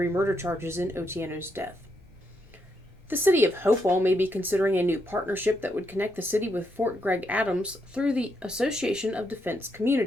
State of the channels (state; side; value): normal; both; correlation 0.79